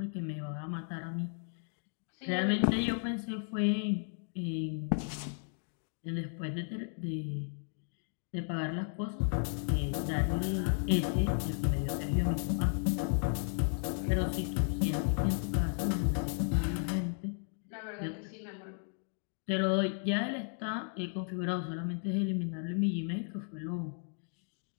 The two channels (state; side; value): silent; right; 55 dB below the other